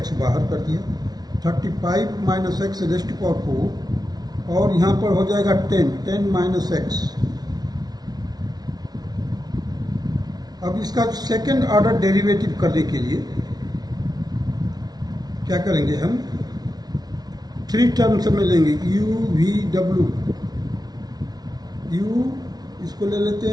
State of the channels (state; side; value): late; left; 0.19 ms